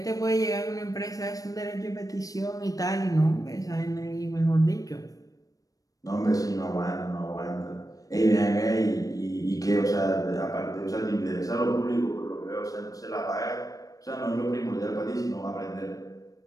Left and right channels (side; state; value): right; late; 0.17 ms